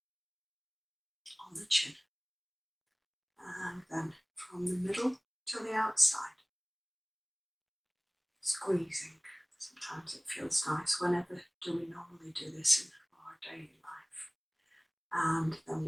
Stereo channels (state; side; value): identical; both; correlation 1.00